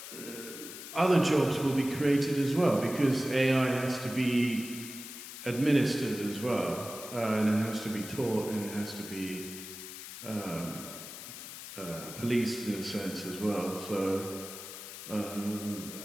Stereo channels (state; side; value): noise; left; hiss, 11 dB below the sound